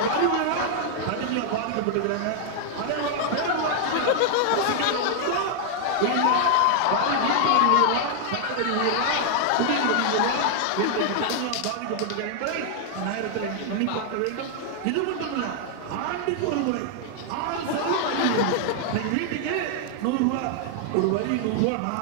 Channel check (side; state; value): both; different; correlation 0.00